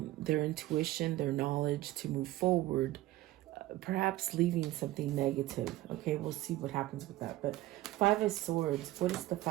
their intuition, their knowledge to move forward, perhaps leaving something negative. Okay, we'll see what happens with that. But Five of Swords, what is the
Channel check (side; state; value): left; quieter; 16.4 dB